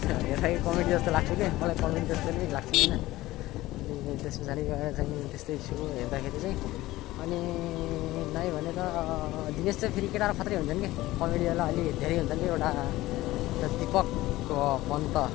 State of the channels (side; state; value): right; quieter; 17.4 dB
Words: हेर्दाखेरि कमेडी जस्तो लाग्छ कि, मलाई कमेडी जस्तो नै लाग्छ होइन। अनि त्यस पछाडि गएर चाहिँ त्यस्तै छु हेर्दाखेरि चाहिँ। अनि नाइ भने त दिनेश चाहिँ फेरि केटाहरू खत्रै हुन्छन् कि, कमेडीवाला अलि धेरै हुन्छन् कि। एउटा दिपक पन्त